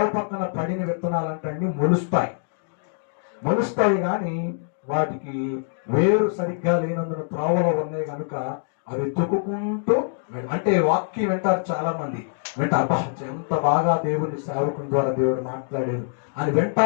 పక్కన పడిన విత్తనాలంటే మొలుస్తాయి కానీ వాటికి వేరు సరిగ్గా లేనందున త్రోవలో ఉన్నాయి కనుక అవి తొక్కుకుంటూ, అంటే వాక్యం వింటారు చాలా మంది. అబ్బా ఎంత బాగా దేవుని సేవకుని ద్వారా దేవుడు మాట్లాడారు అని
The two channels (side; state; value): right; silent; digital silence